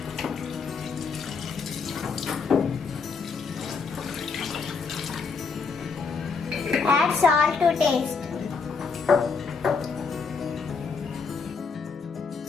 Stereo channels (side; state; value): right; quieter; 5.0 dB